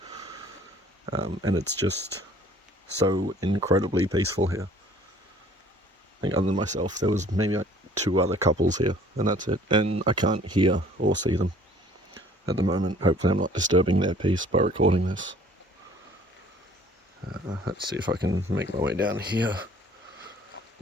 And it's just so incredibly peaceful here. I think other than myself, there was maybe like 2 other couples here, and that's it. And I can't hear or see them at the moment. Hopefully I'm not disturbing their peace by recording this. Let's see if I can make my way down here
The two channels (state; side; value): normal; both; correlation 0.55